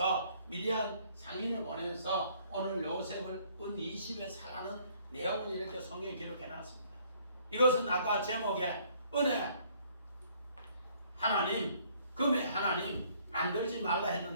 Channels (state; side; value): inverted; both; correlation -0.62